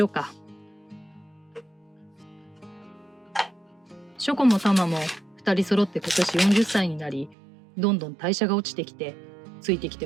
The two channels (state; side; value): drops out; left; at 7.4 s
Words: うか。ショコもタマも2人揃って今年40歳になり、どんどん代謝が落ちてきて、ついてき